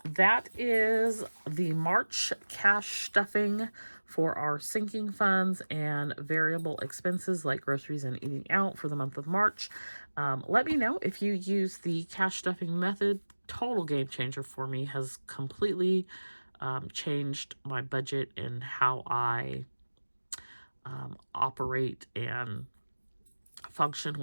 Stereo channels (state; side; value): inverted; both; correlation -1.00